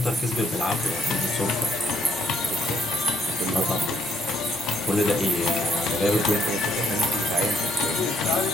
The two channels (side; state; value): both; normal; correlation 0.73